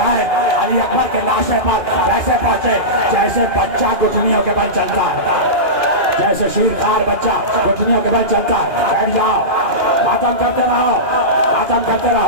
علی اکبر کے لاشے پر ویسے پہنچے جیسے بچہ گٹھنیوں کے بل چلتا ہے, جیسے شیرخوار بچہ گٹھنیوں کے بل چلتا ہے. بیٹھ جاؤ, ماتم کرتے رہو, ماتم کرتے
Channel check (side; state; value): left; late; 2.4 ms